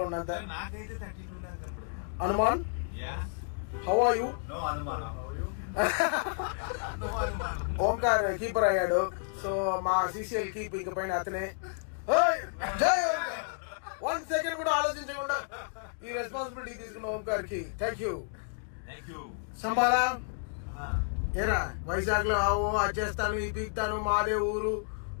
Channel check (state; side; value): silent; right; digital silence